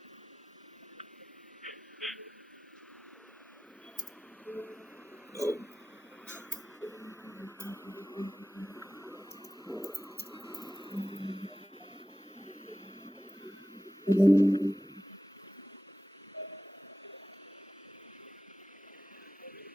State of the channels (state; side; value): normal; both; correlation 0.95